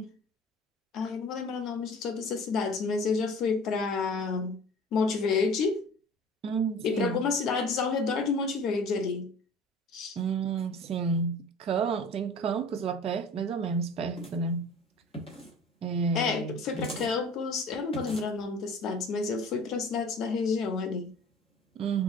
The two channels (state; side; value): normal; both; correlation 0.43